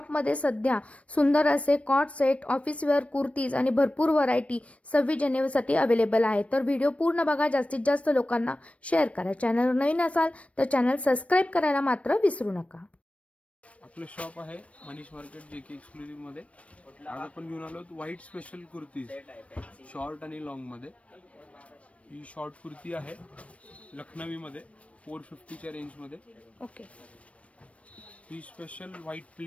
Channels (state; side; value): late; right; 0.064 ms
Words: सध्या सुंदर असे cot set, office wear kurtis आणि भरपूर व्हरायटी 26 जानेवारीसाठी अवेलेबल आहे। तर व्हिडिओ पूर्ण बघा, जास्तीत जास्त लोकांना शेअर करा। चॅनलवर नवीन असाल तर चॅनल सबस्क्राइब करायला मात्र विसरू नका। आपलं शॉप आहे मनीष मार्केट JK एक्सक्लुझिव्ह मध्ये। आज आपण घेऊन आलो व्हाईट स्पेशल कुर्तीज, शॉर्ट आणि लॉंग मध्ये। ही शॉर्ट कुर्ती आहे लखनवी मध्ये 450 च्या रेंज मध्ये। ओके, ही स्पेशल व्हाईट